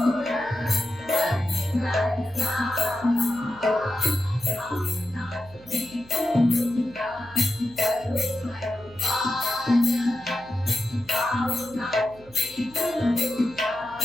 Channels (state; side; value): noise; right; hum, 24 dB below the sound